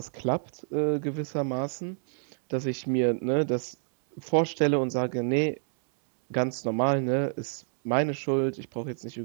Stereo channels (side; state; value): left; silent; 59 dB below the other